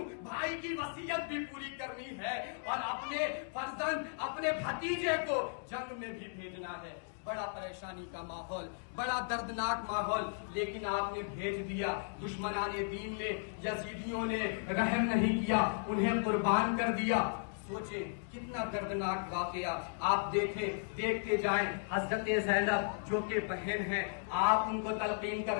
بھائی کی وصیت بھی پوری کرنی ہے اور اپنے فرزند، اپنے بھتیجے کو جنگ میں بھی بھیجنا ہے۔ بڑا پریشانی کا ماحول، بڑا دردناک ماحول، لیکن آپ نے بھیج دیا۔ دشمنان دین نے، یزیدیوں نے رحم نہیں کیا، انہیں قربان کر دیا۔ سوچیں کتنا دردناک واقعہ، آپ دیکھتے جائیں۔ حضرت زینب جو کہ بہن ہے، آپ ان کو تلقین کر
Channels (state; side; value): silent; right; digital silence